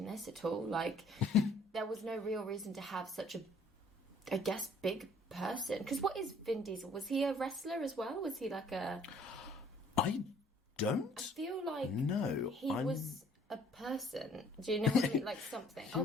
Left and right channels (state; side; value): normal; both; correlation 0.58